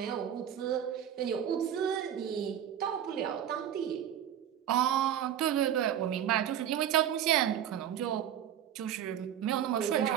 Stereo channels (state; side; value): quieter; left; 10.1 dB